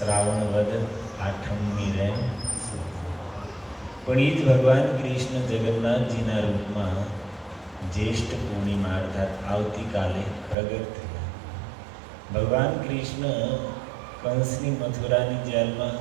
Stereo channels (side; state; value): left; drops out; at 10.6 s